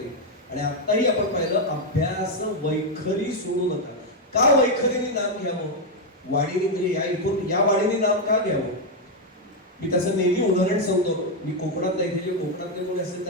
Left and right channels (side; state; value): both; normal; correlation 0.02